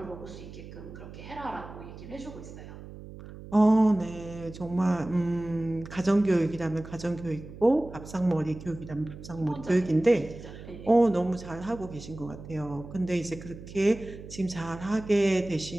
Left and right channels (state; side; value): noise; right; hum, 14 dB below the sound